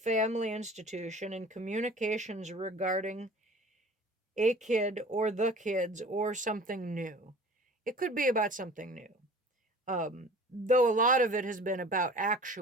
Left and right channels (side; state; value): both; normal; correlation 0.44